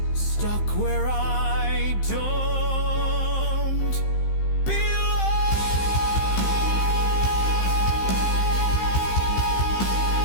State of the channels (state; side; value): late; right; 15 ms